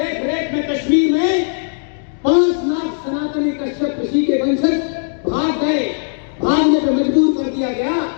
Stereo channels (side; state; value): right; silent; digital silence